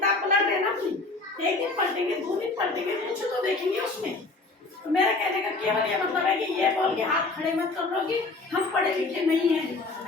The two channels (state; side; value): quieter; right; 3.5 dB